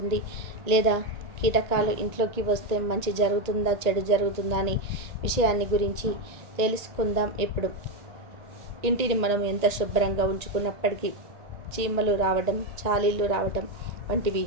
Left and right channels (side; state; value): left; late; 1.8 ms